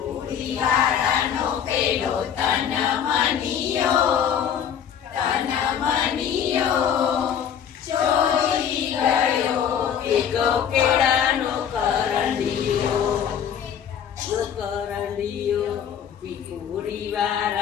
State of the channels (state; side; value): quieter; right; 8.6 dB